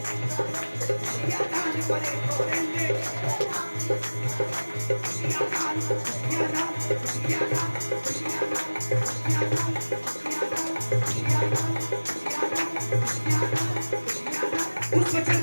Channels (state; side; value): inverted; both; correlation -1.00